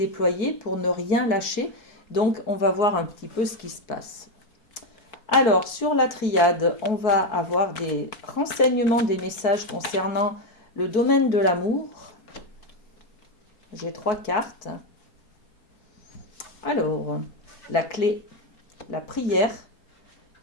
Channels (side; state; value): right; late; 4.6 ms